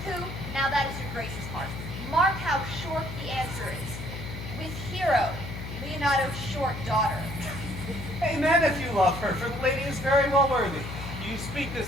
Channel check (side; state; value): left; noise; hum, 8 dB below the sound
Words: who? Now that is your grace's part. Mark how short the answer is. With Hero, Leonardo's short daughter. Amen if you love her, for the lady is very well worthy. You speak